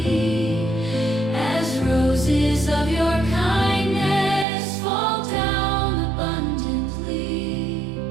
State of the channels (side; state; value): left; drops out; at 4.5 s